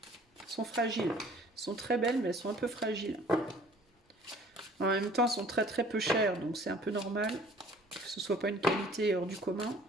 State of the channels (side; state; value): both; normal; correlation 0.52